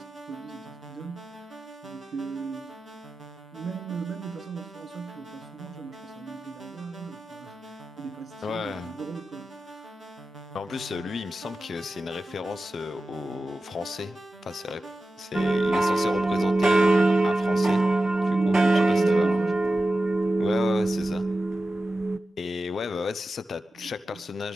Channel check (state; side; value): normal; both; correlation 0.94